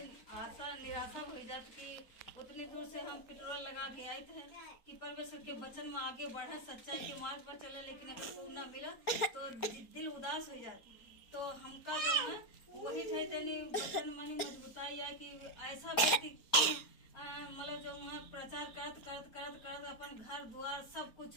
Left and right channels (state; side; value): late; right; 4.5 ms